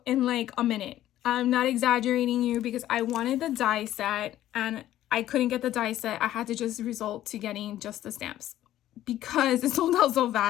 in like a minute. I'm not exaggerating you, because I wanted the die set and I couldn't get the die set. I had to just resort to getting just the stamps because it sold out so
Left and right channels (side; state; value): right; quieter; 13.2 dB